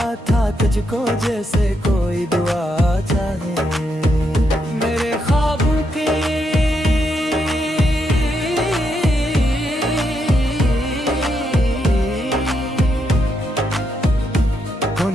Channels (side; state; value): both; normal; correlation 0.80